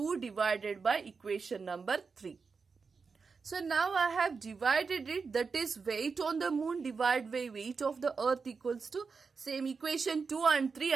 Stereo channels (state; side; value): quieter; left; 5.0 dB